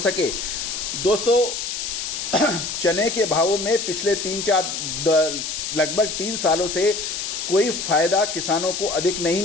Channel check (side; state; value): left; noise; hiss, 4 dB below the sound